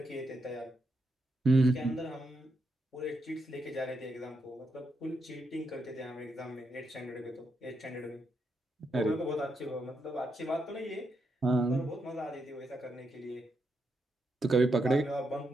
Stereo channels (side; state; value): both; normal; correlation 0.82